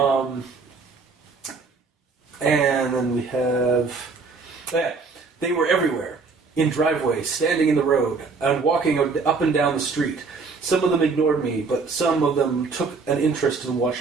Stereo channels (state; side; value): quieter; left; 4.5 dB